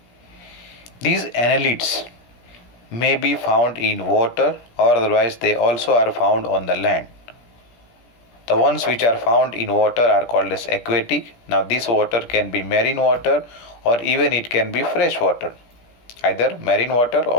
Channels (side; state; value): right; late; 17 ms